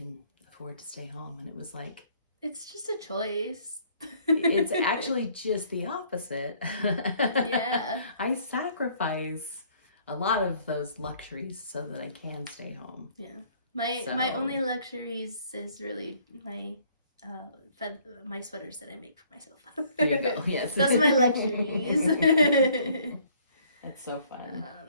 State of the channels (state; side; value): inverted; both; correlation -0.60